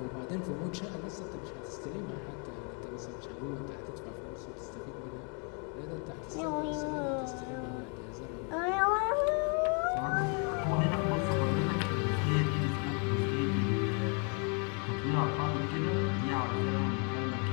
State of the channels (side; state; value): right; quieter; 37.6 dB